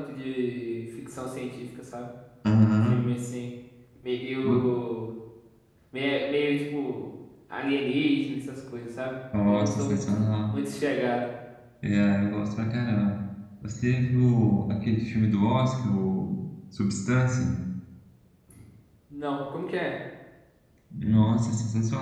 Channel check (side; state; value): both; identical; correlation 1.00